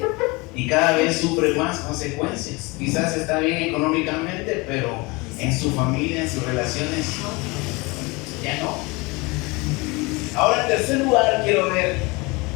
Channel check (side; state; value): right; quieter; 25.5 dB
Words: y cada vez sufre más consecuencias. Quizás está bien económicamente, pero en su familia, en sus relaciones, ya no. Ahora, en tercer lugar, quiero ver